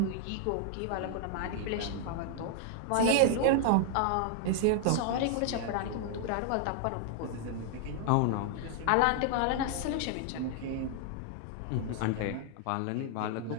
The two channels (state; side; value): different; both; correlation 0.00